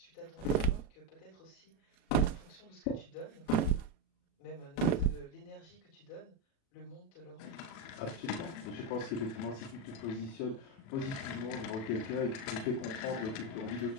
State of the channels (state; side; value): late; right; 37 ms